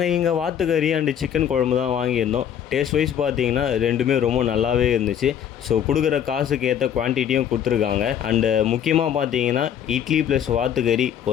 இங்கே வாத்துக்கறி அண்டு சிக்கன் குழம்பு தான் வாங்கியிருந்தோம். டேஸ்ட் வைஸ் பார்த்தீங்கன்னா ரெண்டுமே ரொம்ப நல்லாவே இருந்துச்சு. ஸோ கொடுக்குற காசுக்கு ஏற்ற குவான்டிட்டியும் கொடுத்துருக்காங்க. அண்டு முக்கியமாக பார்த்தீங்கன்னா இட்லி ப்ளஸ் வாத்துக்கறி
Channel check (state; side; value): quieter; right; 9.2 dB